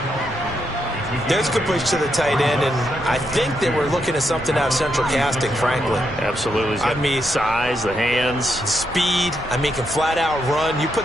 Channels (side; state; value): both; normal; correlation 0.80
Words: There's a good push to the tight end, and I think they were looking at something out of central casting, frankly. Absolutely. I mean, size, the hands. Speed, I mean, can flat out run. You